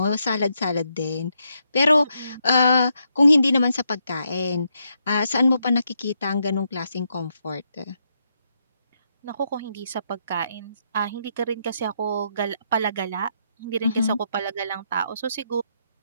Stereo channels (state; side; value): inverted; both; correlation -0.79